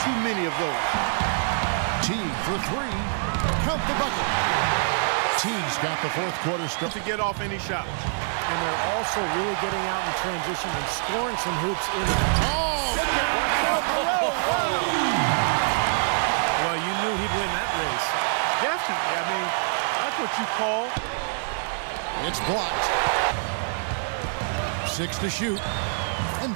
too many of those. Teague for three. Count the bucket. Teague's got the fourth quarter start. To get off any shots. And they're also really getting out in transition and scoring some hoops in the... Oh! Well, you knew he'd win that race. Definitely. I mean, that's what you call... It's blocked. 6 to shoot. And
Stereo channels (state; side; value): silent; left; 61 dB below the other